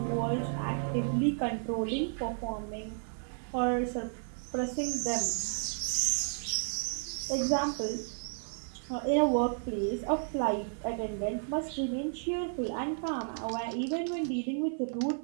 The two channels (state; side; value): silent; left; 56 dB below the other